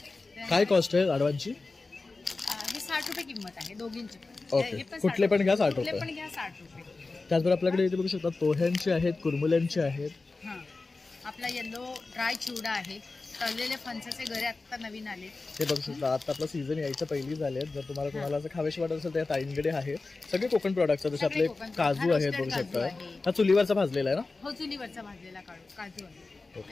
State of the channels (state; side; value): quieter; right; 3.6 dB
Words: काय कॉस्ट आहे लाडवांची? हे 60 रुपये किंमत आहे दोघींची. ओके. कुठले पण घ्या 60 रुपये. कुठले पण घ्या 60 रुपये. त्याचबरोबर आपल्याकडे इथे बघू शकता पोह्यांचे आहेत, कुरमुल्यांचे आहेत. हां, आपला येलो ड्राय चिवडा आहे. तळलेले फणसाचे घरे आत्ता नवीन आले. हे बघू शकता, आता आपला सीझन यायच्या पहिली झाले आहेत. जर तुम्हाला असं खावेशी वाटत असेल तर ताईंकडे आहे सगळे कोकण प्रोडक्ट्स. जसे आपले काजू आहेत, बघू शकता. हा चुलीवरचा भाजलेला आहे ना? हो, चुलीवरचा भाजलेला काजू आहे.